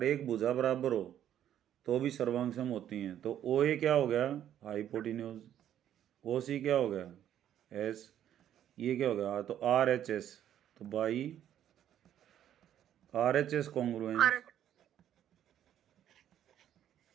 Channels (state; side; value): quieter; left; 10.8 dB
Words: एक भुजा बराबर हो तो भी सर्वांग सम होती हैं। तो ओ ए क्या हो गया, हाइपोटेन्यूज। ओ सी क्या हो गया, एस। ये क्या हो गया, तो आर एच एस, तो by R H S congruence